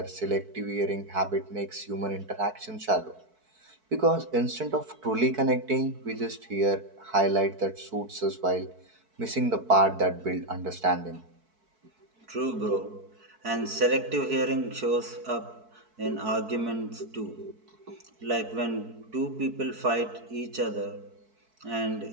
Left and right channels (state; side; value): late; left; 4.6 ms